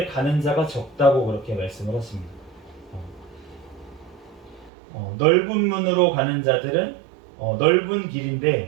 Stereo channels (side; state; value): left; drops out; at 4.7 s